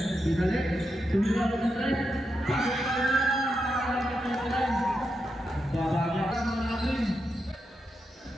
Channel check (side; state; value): both; normal; correlation 0.85